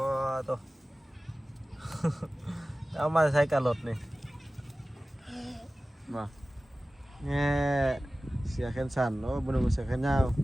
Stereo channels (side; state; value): both; normal; correlation 0.97